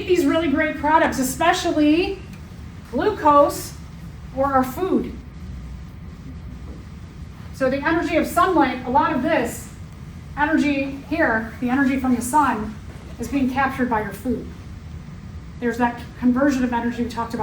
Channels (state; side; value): identical; both; correlation 1.00